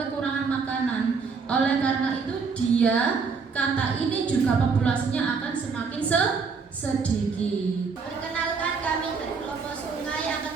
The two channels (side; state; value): left; quieter; 5.2 dB